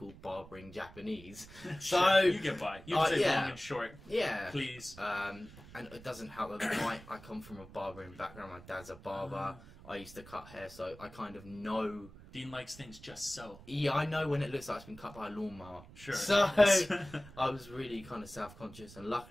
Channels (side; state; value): right; noise; rumble, 19 dB below the sound